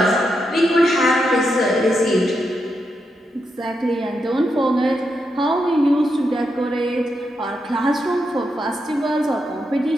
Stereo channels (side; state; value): both; normal; correlation 0.84